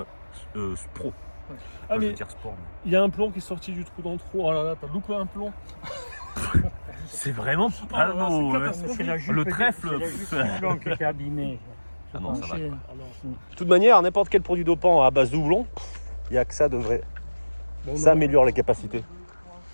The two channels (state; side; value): inverted; both; correlation -1.00